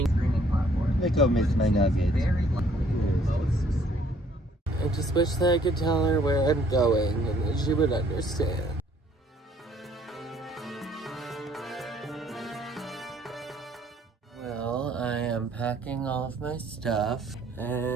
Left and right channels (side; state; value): both; normal; correlation 0.62